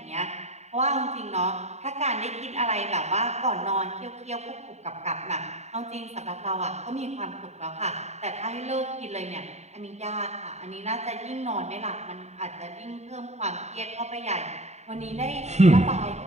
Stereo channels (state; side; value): late; left; 0.32 ms